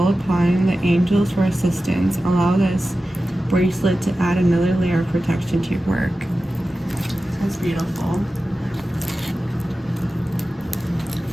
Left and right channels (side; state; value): both; normal; correlation 0.94